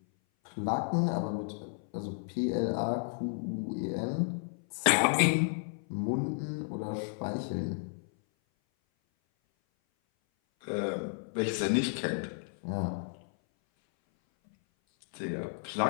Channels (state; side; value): silent; right; 56 dB below the other